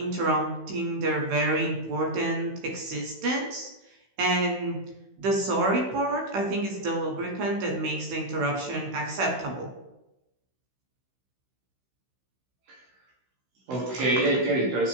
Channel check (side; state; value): left; late; 16 ms